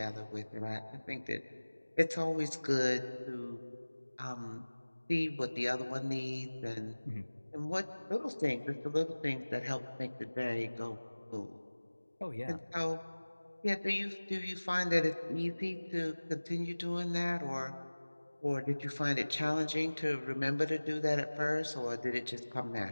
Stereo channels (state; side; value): inverted; both; correlation -1.00